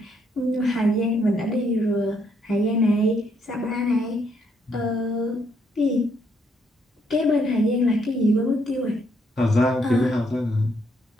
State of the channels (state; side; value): normal; both; correlation 0.72